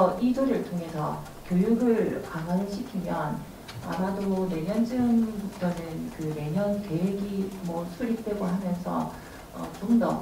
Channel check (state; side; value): identical; both; correlation 1.00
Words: 이 조례를 통해서 교육을 강화를 시키면 아마도 내년쯤부터는 그 내년 계획이 수립되고 하면서 좀